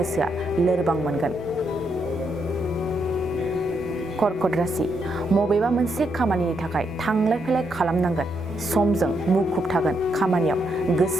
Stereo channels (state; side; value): normal; both; correlation 0.78